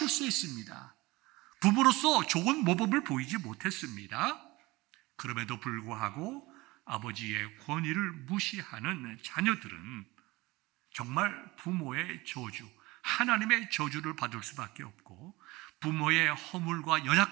부모로서 좋은 모범을 보이지 못했습니다. 그럼에도 불구하고 아버지의 권위를 무시하는 자녀들은 정말 부모의 저주, 하나님의 저주를 받을 수밖에 없고, 부모의 허물과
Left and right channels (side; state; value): left; quieter; 21.4 dB